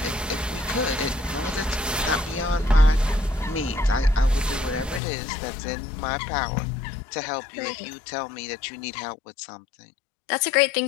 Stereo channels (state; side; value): drops out; right; at 5.0 s